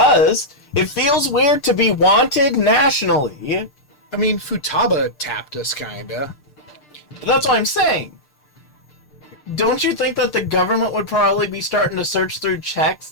It feels weird to be wanted nationally. I mean, Futaba tapped us, kinda. But that's what I'm saying. Don't you think that the government would probably be starting to search through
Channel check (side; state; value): right; late; 6.7 ms